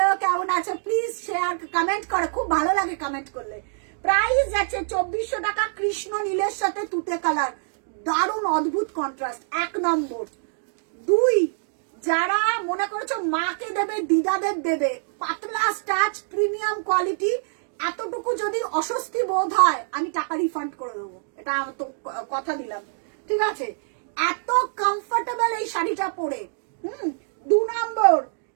কেমন আছো? প্লিজ শেয়ার কমেন্ট করো, খুব ভালো লাগে কমেন্ট করলে। প্রাইস যাচ্ছে 2400 টাকা, কৃষ্ণ নীলের সাথে তুতে কালার, দারুণ অদ্ভুত কন্ট্রাস্ট। 1 নম্বর। 2, যারা মনে করছো মাকে দেবে, দিদাদের দেবে, পাতলা স্টাচ, প্রিমিয়াম কোয়ালিটি, এতটুকু যদি অস্বস্তি বোধ হয় আমি টাকা রিফান্ড করে দেবো, এটা আমি তো কথা দিলাম, ঠিক আছে? এত কমফোর্টেবল এই শাড়িটা পরে। 2 নম্বর,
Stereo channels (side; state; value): left; silent; digital silence